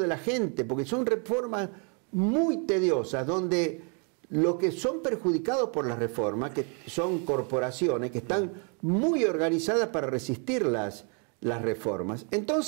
la gente, porque son reformas muy tediosas, donde los que son perjudicados por las reformas, que son corporaciones que están muy organizadas para resistir las reformas.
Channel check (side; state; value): left; quieter; 38.2 dB